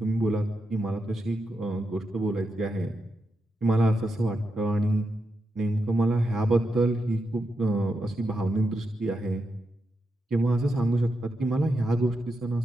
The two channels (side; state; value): both; normal; correlation 0.86